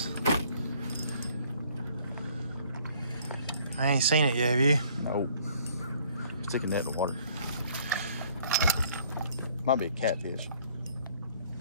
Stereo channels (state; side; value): inverted; both; correlation -0.59